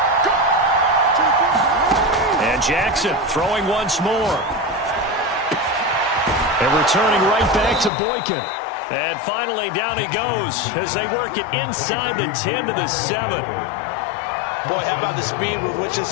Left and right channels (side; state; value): right; drops out; at 7.9 s